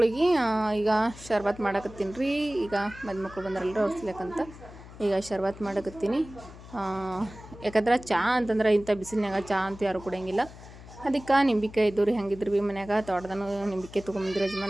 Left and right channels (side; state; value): left; noise; hum, 17 dB below the sound